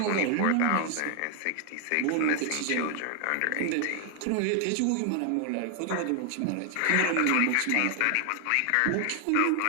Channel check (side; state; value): both; different; correlation 0.00